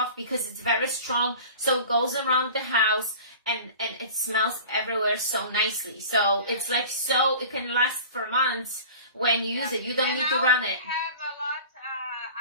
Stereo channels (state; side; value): inverted; both; correlation -0.39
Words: because it's very strong, so it goes around the house, and it smells everywhere so nicely. So it's like, so it can last for months when you use it. You don't need to run it. We have a lot.